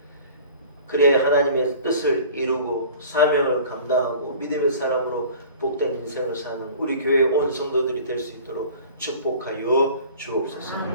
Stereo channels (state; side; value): inverted; both; correlation -0.44